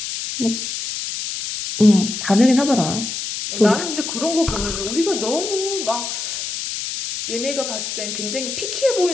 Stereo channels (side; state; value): left; noise; hiss, 5 dB below the sound